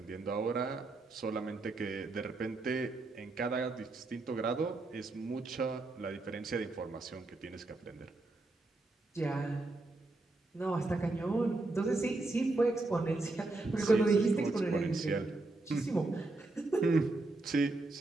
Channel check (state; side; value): quieter; left; 3.1 dB